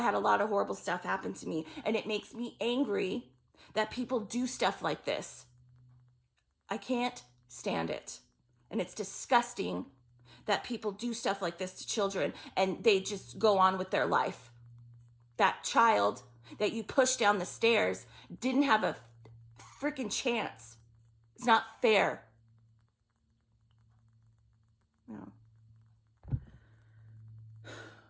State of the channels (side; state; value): both; identical; correlation 1.00